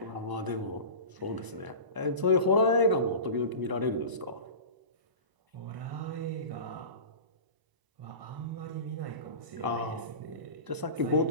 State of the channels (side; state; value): left; late; 1.0 ms